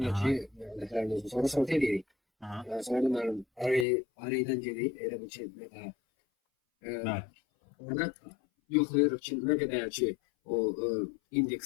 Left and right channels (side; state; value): right; drops out; at 3.9 s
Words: de ki vectorlarımız sonra sort edirik. Aha. Yani sonra da benim array'den gelip elə bir şey mesela Bəli. orada yoxlayırıq ki ne kadar ki o